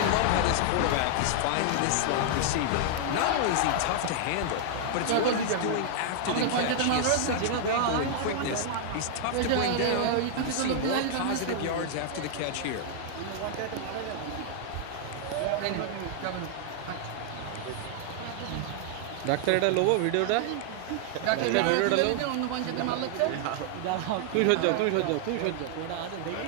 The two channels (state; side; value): different; both; correlation 0.00